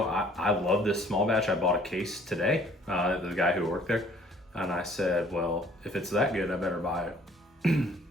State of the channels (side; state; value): both; normal; correlation 0.57